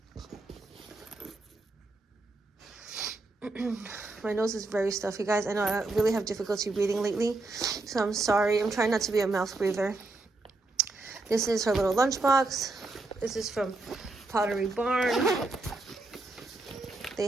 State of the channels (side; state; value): left; quieter; 3.1 dB